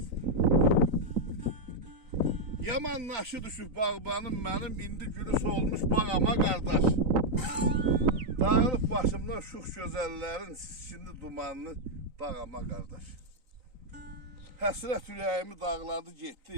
Yaman naşı düşüp bağbanım benim indi gülü solmuş bağama kardeş. Dağılıp başımdan şux gözellerin şimdi dumanlı bağama kardeş. Həsrət ürəyimi dağladı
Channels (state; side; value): late; left; 3.9 ms